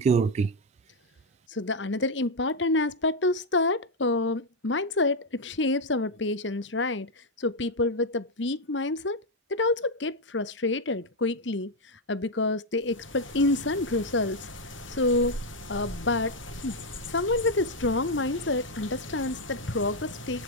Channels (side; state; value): both; normal; correlation 0.02